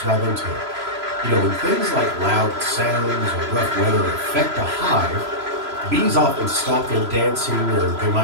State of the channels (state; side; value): late; left; 3.0 ms